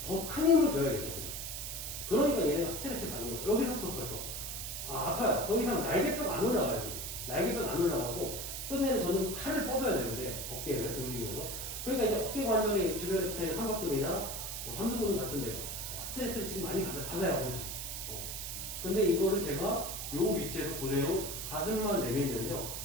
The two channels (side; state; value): right; noise; hiss, 5 dB below the sound